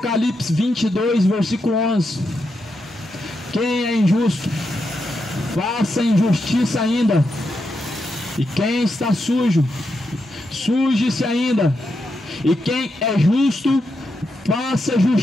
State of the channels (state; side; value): normal; both; correlation 0.84